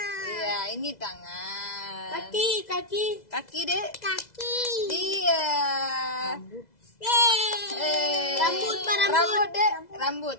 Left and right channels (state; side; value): late; right; 2.0 ms